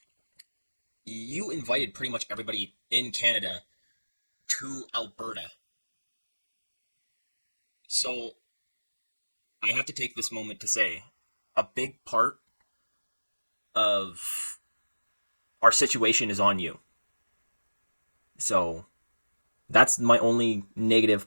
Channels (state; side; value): inverted; both; correlation -1.00